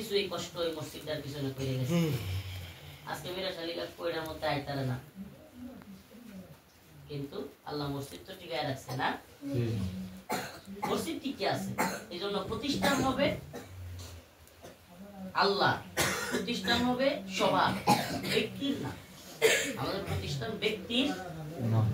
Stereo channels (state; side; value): identical; both; correlation 1.00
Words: এই কষ্ট এই মসজিদটার পিছনে করে গেছে আজকে মিরাশালী দেখো এটার মধ্যে আইতারে না কিন্তু আল্লাহ মসজিদ তো টিকায় রাখছে না মসজিদ টিকে আছে এই জন্য প্রতিষ্ঠান হবে আল্লাহ প্রতিষ্ঠান হবে সবার ব্যক্তির না আমাদের প্রতিষ্ঠান ব্যক্তির